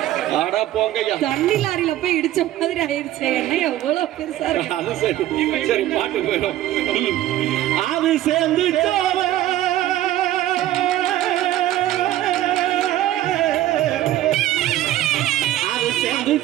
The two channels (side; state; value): left; quieter; 13.8 dB